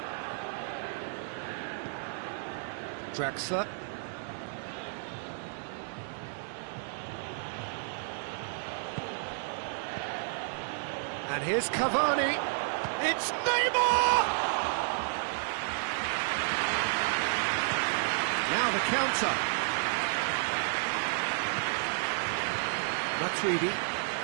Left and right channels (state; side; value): silent; left; 57 dB below the other